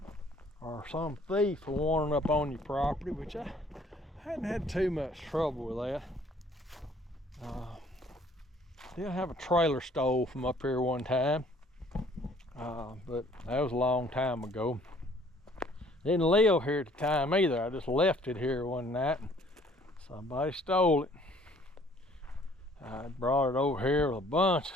or some thief wanting up on your property, which I hadn't had too much trouble with that. Did have a trailer stole from up here one time, but that was a long time ago. Didn't live here at the time either. I just left it here one night and somebody stole it. I brought it over here with a bunch of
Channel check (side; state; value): both; normal; correlation 0.58